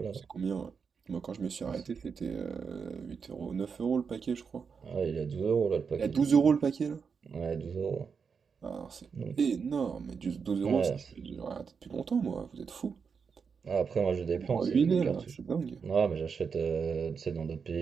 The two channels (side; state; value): left; quieter; 5.9 dB